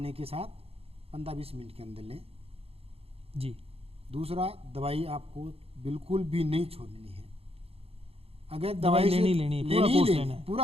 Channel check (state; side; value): late; left; 0.28 ms